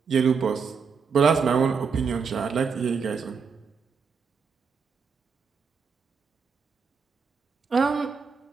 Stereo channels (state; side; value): quieter; left; 5.7 dB